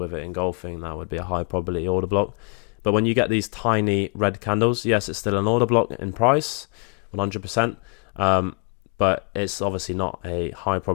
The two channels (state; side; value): quieter; right; 34.0 dB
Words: it engulfing. That would be a high probability order block. But when you get these tiny red candles, yes, it's still an order block in price, 100%. But it's obviously not a high